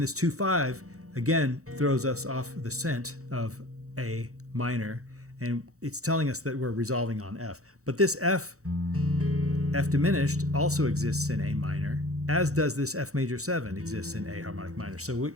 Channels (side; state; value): left; late; 0.65 ms